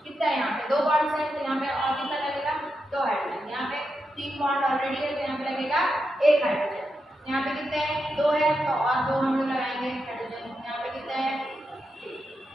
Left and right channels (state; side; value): normal; both; correlation 0.86